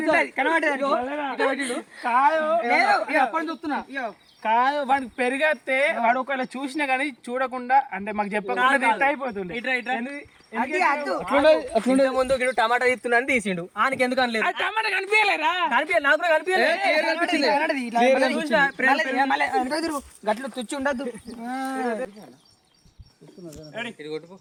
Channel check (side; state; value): both; identical; correlation 1.00